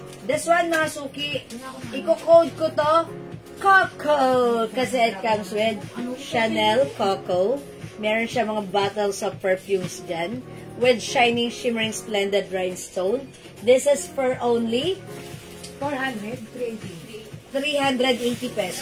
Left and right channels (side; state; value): both; identical; correlation 1.00